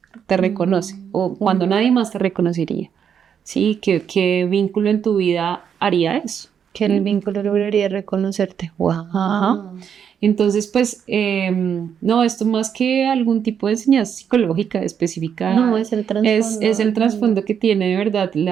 te reconoce o cuando nadie más te reconocería. Sí, ¿qué vínculo en tu vida haría eso? Que el vínculo lograría reconocerte. ¡Wow! Ajá. Entonces, pues, no, esto más que algún tipo de enseñanza psicológica específica, No, es el trasfondo. es el trasfondo que tiene de verdad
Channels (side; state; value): left; quieter; 7.9 dB